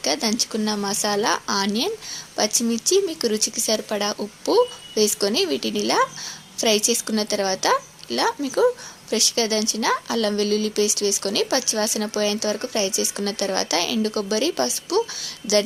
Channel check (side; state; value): both; identical; correlation 1.00